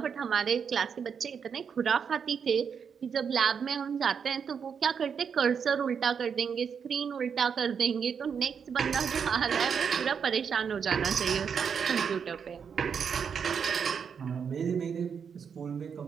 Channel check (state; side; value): quieter; left; 6.8 dB